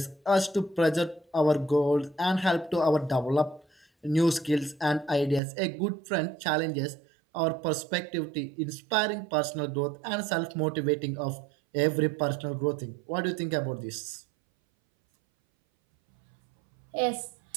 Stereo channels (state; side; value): drops out; left; at 5.4 s